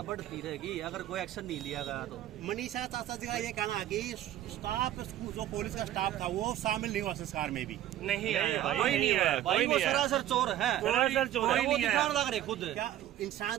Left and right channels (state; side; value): quieter; left; 12.6 dB